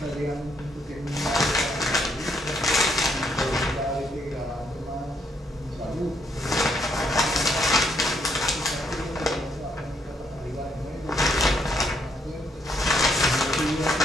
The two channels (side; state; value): both; normal; correlation 0.72